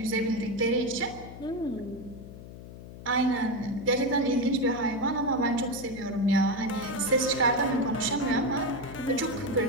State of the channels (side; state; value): left; noise; hum, 14 dB below the sound